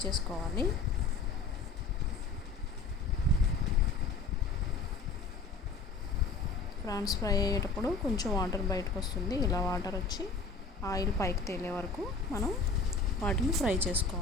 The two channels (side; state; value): right; quieter; 4.2 dB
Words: చేసుకోవాలి. ప్రాన్స్ ఫ్రై అయ్యేటప్పుడు కొంచెం వాటర్ బయటకు వస్తుంది. ఇలా వాటర్ వచ్చి ఆయిల్ పైకి తేలే వరకు మనం వాటిని ఫ్రై